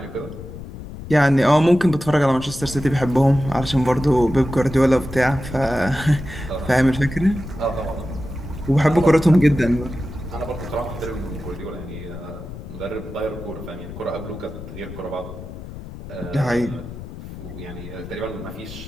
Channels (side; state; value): left; noise; rumble, 12 dB below the sound